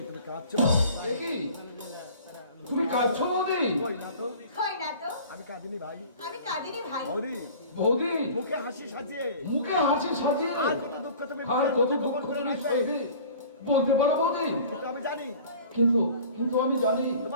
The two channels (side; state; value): both; inverted; correlation -0.45